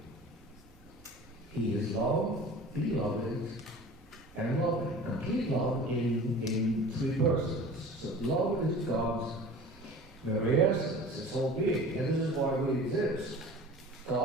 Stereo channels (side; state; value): both; normal; correlation 0.40